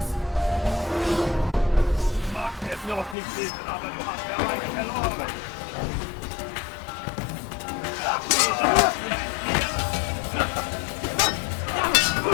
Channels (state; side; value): drops out; right; at 3.2 s